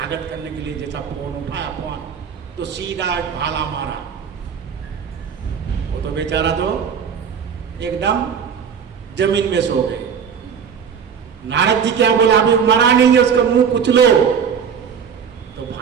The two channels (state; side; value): quieter; left; 7.1 dB